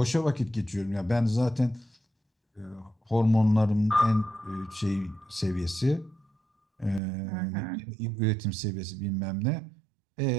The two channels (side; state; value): left; drops out; at 7.0 s